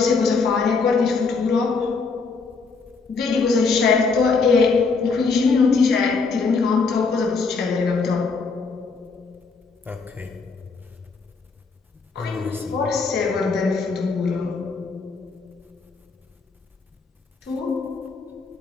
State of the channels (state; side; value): quieter; right; 4.6 dB